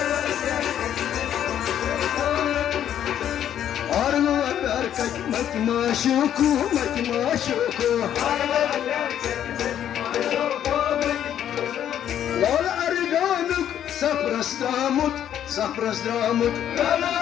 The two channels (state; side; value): quieter; right; 10.3 dB